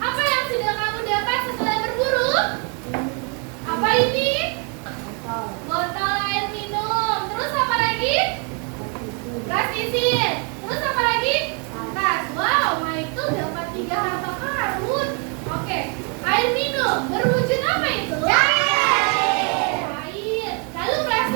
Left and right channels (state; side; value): quieter; left; 37.2 dB